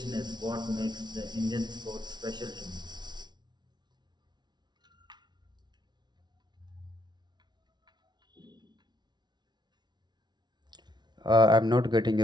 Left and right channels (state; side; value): late; left; 0.20 ms